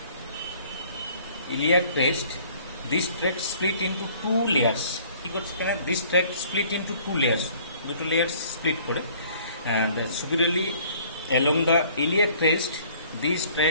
this tract split into two layers. This tract split into two layers. The two layers split and superiorly along the iliac crest, this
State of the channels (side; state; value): both; inverted; correlation -0.56